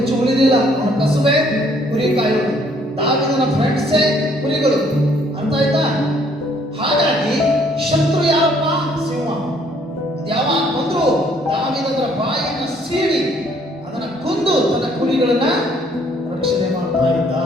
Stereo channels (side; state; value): both; normal; correlation 0.64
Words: ಉಳಿದಿಲ್ಲ. ಅವನ ಕಸುಬೆ ಕುರಿ ಕಾಯೋದು, ದಾವೀದನ ಫ್ರೆಂಡ್ಸೇ ಕುರಿಗಳು. ಅರ್ಥ ಆಯ್ತಾ? ಹಾಗಾಗಿ ಶತ್ರು ಯಾರಪ್ಪ? ಸಿಂಹ. ಯಾವಾಗ ಬಂದ್ರು ದಾವೀದನ ಬಾಯಿಯನ್ನ ಸೀಳಿ ಅದನ್ನ ಕೊಂದು ತನ್ನ ಕುರಿಗಳನ್ನ ರಕ್ಷಣೆ ಮಾಡ್ತಾ ಇದ್ದ.